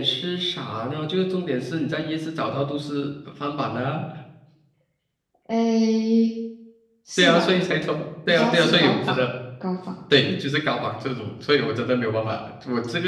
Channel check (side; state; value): both; identical; correlation 1.00